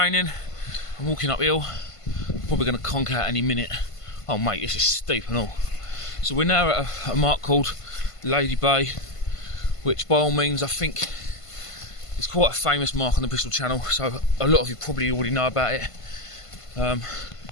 I'm walking uphill, probably going to conk out any minute. Oh mate, this is steep and all. So we're now at a mark called Lady Bay, which by all means I think is quite a famous mark on the Bristol Channel, so a lot of you probably already know about it.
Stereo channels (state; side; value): late; right; 1.5 ms